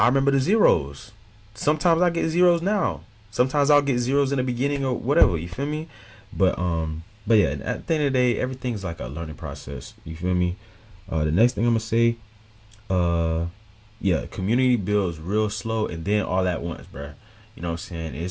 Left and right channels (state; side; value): identical; both; correlation 1.00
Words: remember the zeros. Sometimes I get zeros now. Sometimes I'll get zeros in the beginning or whatever. You feel me? But yeah, at the end of the day, everything's like a learning process. You feel me? The next thing I'm gonna say, uh, yeah, community builds real slow and then all at once, bruh. You know what I'm saying?